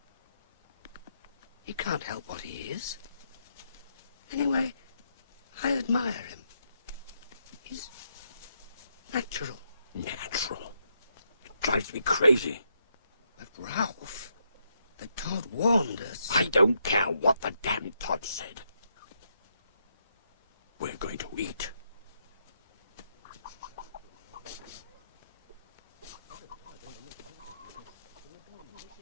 He can't help what he is. Anyway, I admire him. He's natural. Natural? It drives me crazy. But Ralph, the Todd warned us. I don't care what the damn Todd said. We're going to eat.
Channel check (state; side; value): inverted; both; correlation -0.79